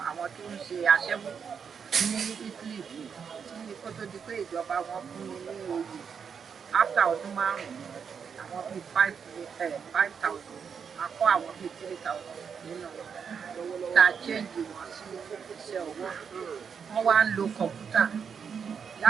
àwọn tó ń ṣe aṣẹ́wó ní Italy tí kó tó di pé ìjọba wọn fún mi ní oyè after ọdún 5 àwọn bíi 5,000 akọ́ àwọn bíi 3,000 nínú tá a change wọn sí iṣẹ́ ọwọ́ wọ́n wá ń lo kọ̀ǹpútà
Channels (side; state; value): left; quieter; 6.7 dB